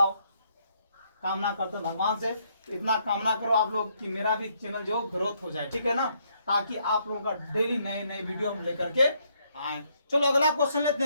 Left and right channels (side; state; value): both; inverted; correlation -0.72